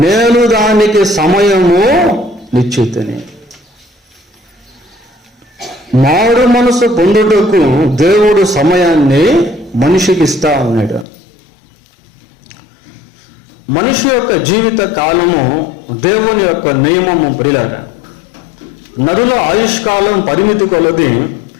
నేను దానికి సమయము నిశ్చితిని. మారు మనసు పొందుటకు దేవుడు సమయాన్ని మనిషికి ఇస్తా ఉన్నాడు. మనిషి యొక్క జీవిత కాలము దేవుని యొక్క నియమము ప్రియులారా. నరుల ఆయుష్కాలం పరిమితి కొలది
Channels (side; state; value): right; drops out; at 11.1 s